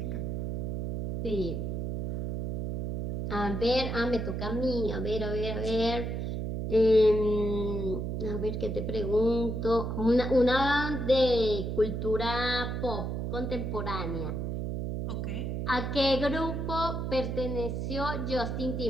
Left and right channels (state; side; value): noise; right; hum, 2 dB below the sound